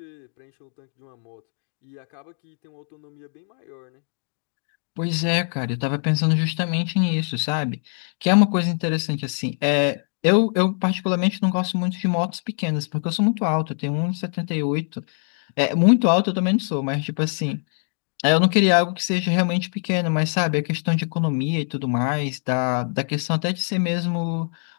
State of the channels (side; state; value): right; silent; 57 dB below the other